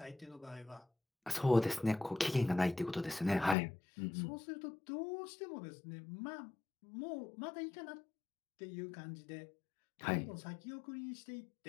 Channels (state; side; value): drops out; right; at 3.6 s